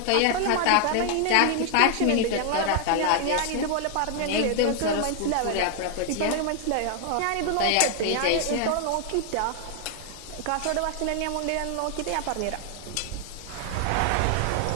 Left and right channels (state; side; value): different; both; correlation 0.00